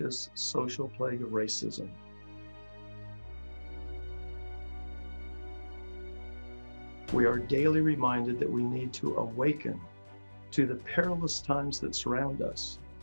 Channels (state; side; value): inverted; both; correlation -1.00